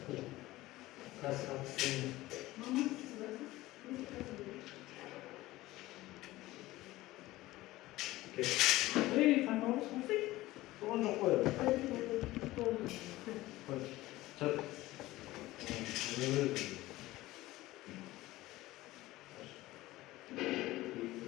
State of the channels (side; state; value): right; quieter; 17.7 dB